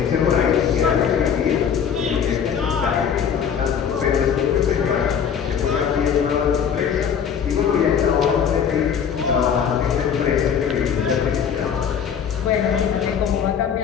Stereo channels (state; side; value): quieter; right; 7.6 dB